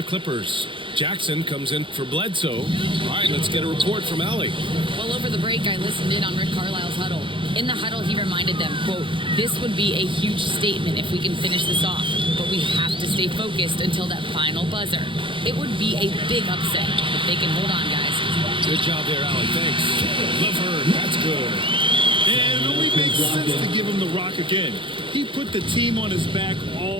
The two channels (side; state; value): left; late; 0.25 ms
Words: Clippers. Jackson comes in for Bledsoe. All right, let's get a report from Allie. Well, over the break, I listened in on Rick Carlisle's huddle. In the huddle, he reminded them, quote, "This would be a huge statement if we can finish this off, but we have to stay focused until that final buzzer. It would be a big upset if they can hold on, guys." Good job there, Allie. Thanks. LeVert, that's good. And it only makes sense to give him the rock again. He put the team on his back